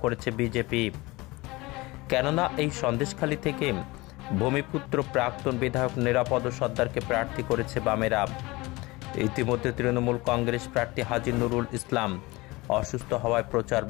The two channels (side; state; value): right; quieter; 22.2 dB